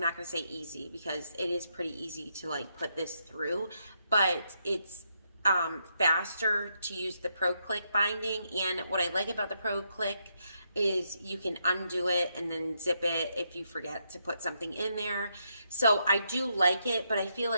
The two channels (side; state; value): both; inverted; correlation -0.79